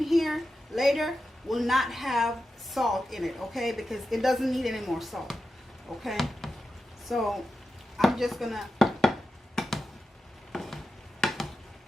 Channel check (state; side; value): normal; both; correlation 0.91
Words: here later will not have salt in it, okay? Because it doesn't need any more salt, okay? So I'm just gonna